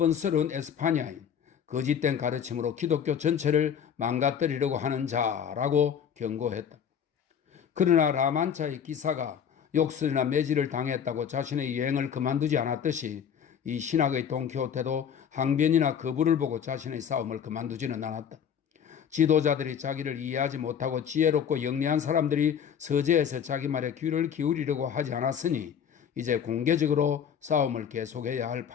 에스파냐인, 거짓된 가르침으로 기독교 전체를 망가뜨리려고 하는 자라고 경고했다. 그러나 라만차의 기사가 욕설이나 매질을 당했다고 자신의 여행을 그만두지 않았듯이 이 신학의 돈키호테도 항변이나 거부를 보고 자신의 싸움을 그만두지는 않았다. 지도자들이 자기를 이해하지 못하고 지혜롭고 영리한 사람들이 서재에서 자기 말에 귀를 기울이려고 하지 않았으니 이제 공개적으로 싸움을 계속해야 할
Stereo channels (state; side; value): quieter; right; 8.0 dB